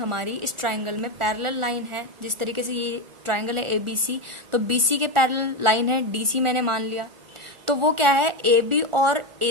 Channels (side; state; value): left; late; 1.4 ms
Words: इस ट्रायंगल में, पैरेलल लाइन है जिस तरीके से ये ट्रायंगल है ABC, तो BC के पैरेलल लाइन है DC मैंने मान लिया। तो वो क्या है, AB और